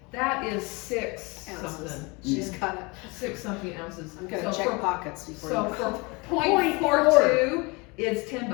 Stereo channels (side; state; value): right; quieter; 27.4 dB